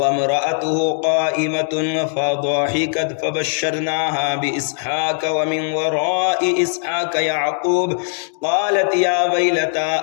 इम्रअतुहु क़ाइमतुन फ़ضحكت फ़बश्शरनाहा बिइस्हाक़ व मिन वराइ इस्हाक़ याक़ूब क़ालत या वैलता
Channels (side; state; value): right; silent; digital silence